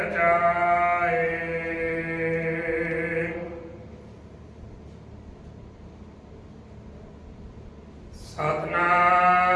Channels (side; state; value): both; identical; correlation 1.00